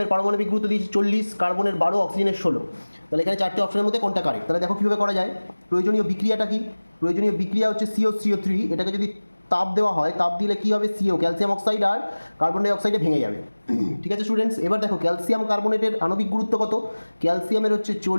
পারমাণবিক গুরুত্ব দিয়েছে 40, কার্বনের 12, অক্সিজেনের 16। তাহলে এখানে চারটে অপশনের মধ্যে কোনটা কারেক্ট? তাহলে দেখো কীভাবে করা যায়। প্রয়োজনীয় বিক্রিয়াটা কি? প্রয়োজনীয় বিক্রিয়া হচ্ছে CO3, এটাকে যদি তাপ দেওয়া হয়, তাপ দিলে কী হবে? CO ক্যালসিয়াম অক্সাইড আর কার্বন ডাই অক্সাইডে ভেঙে যাবে। ঠিক আছে স্টুডেন্টস, এবার দেখো ক্যালসিয়াম কার্বনেটের আণবিক গুরুত্ব কত? ক্যালসিয়ামের হচ্ছে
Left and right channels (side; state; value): both; inverted; correlation -1.00